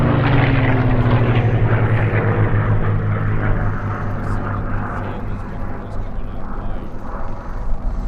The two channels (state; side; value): identical; both; correlation 1.00